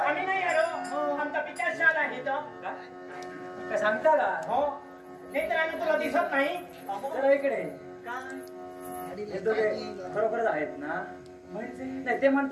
नाही आलो आमचा पिता शाल आहे तर काय सांगता का हो नाही तर आम्ही तुला दिसत नाही. जरा इकडे काय हे दोघे खरोखरच आहेत ना. म्हणजे नाही ते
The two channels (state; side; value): identical; both; correlation 1.00